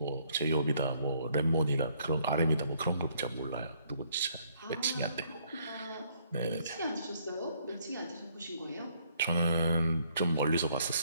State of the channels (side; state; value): both; inverted; correlation -0.67